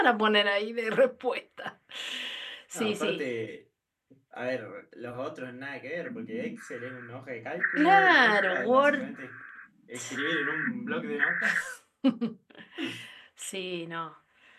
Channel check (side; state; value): both; identical; correlation 1.00